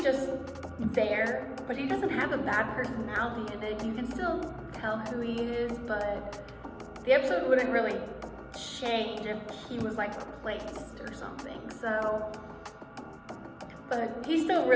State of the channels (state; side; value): identical; both; correlation 1.00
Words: just there, but he doesn't have a bad personality in it. You can still tell who he is, but the episode wouldn't really change if he was like replaced or something. So, but he's still